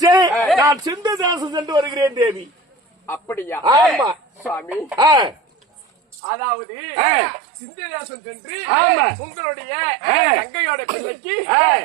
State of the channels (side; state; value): left; drops out; at 6.2 s